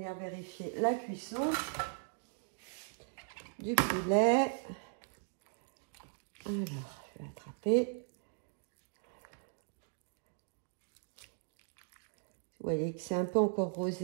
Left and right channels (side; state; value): left; silent; digital silence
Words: vérifier la cuisson du poulet. Alors, je vais l'attraper. Vous voyez que c'est un peu encore